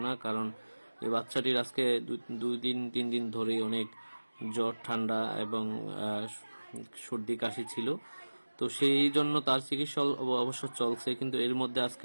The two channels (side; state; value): both; inverted; correlation -1.00